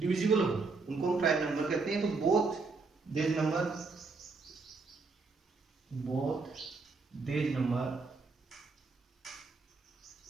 हो उनको हम प्राइम नंबर कहते हैं। तो both these numbers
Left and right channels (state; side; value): quieter; left; 4.1 dB